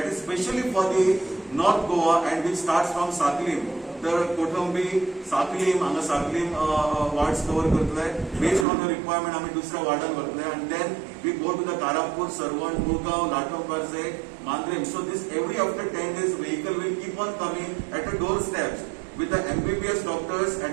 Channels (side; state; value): left; drops out; at 8.7 s